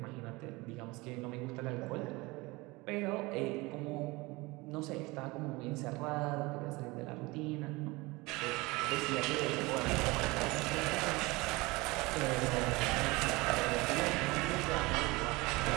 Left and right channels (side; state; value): left; quieter; 23.2 dB